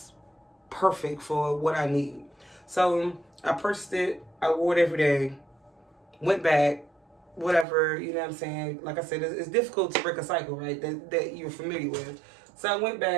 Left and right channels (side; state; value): left; drops out; at 7.7 s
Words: perfect for what I need. So I purchased it. I wore it every day. Went back, whatever, you know what I'm saying? Like I said, it's difficult to break a cycle, right, that you're familiar with. So I went